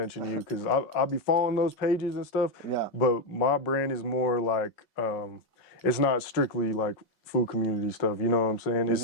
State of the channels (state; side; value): late; right; 5.4 ms